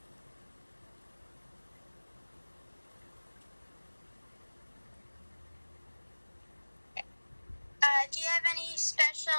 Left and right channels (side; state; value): both; inverted; correlation -1.00